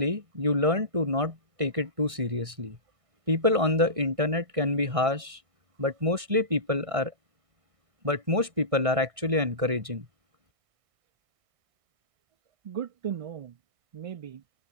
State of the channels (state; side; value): late; left; 1.6 ms